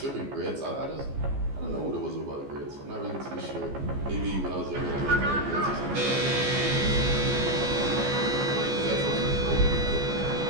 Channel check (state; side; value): late; left; 14 ms